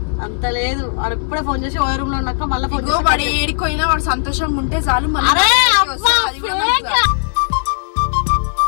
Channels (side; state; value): right; silent; digital silence